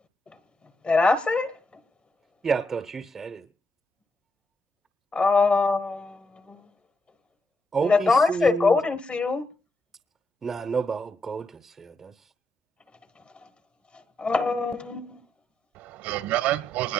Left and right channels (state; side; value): normal; both; correlation 0.80